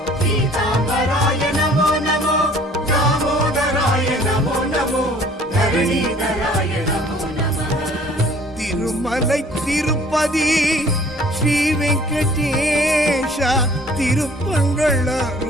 गीताम्बराय नमो नमो दामोदराय नमो नमो धरणीधराय नमो नमः திருமலை திருப்பதி ஸ்ரீ வெங்கடேஷா திருப்பங்கள்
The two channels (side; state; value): both; normal; correlation 0.54